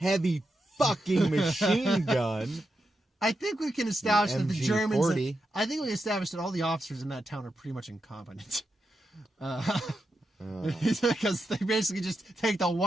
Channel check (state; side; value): normal; both; correlation 0.87